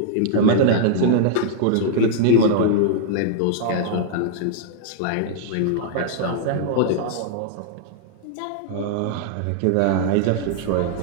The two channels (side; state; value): both; different; correlation -0.01